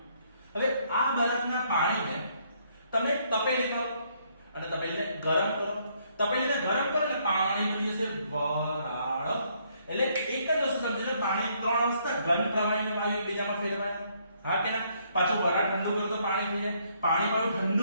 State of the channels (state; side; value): inverted; both; correlation -0.69